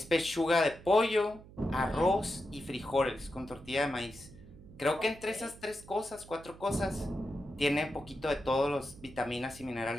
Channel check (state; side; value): noise; right; hum, 19 dB below the sound